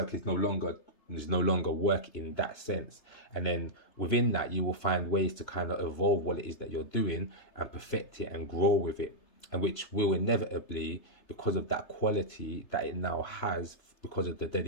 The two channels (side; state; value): right; late; 3.3 ms